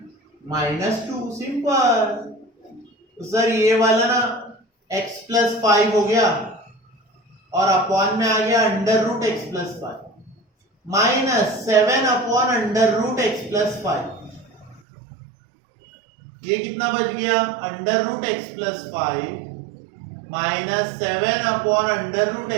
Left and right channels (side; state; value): left; drops out; at 14.8 s